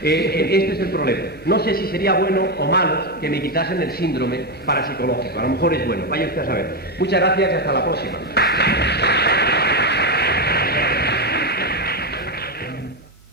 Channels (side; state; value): both; normal; correlation 0.09